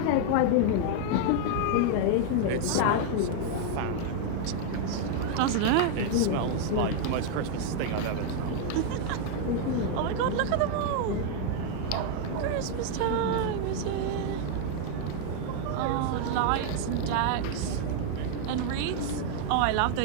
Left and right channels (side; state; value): both; different; correlation 0.00